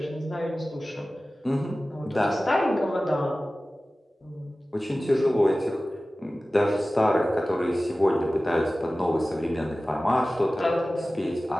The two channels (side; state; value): both; normal; correlation 0.96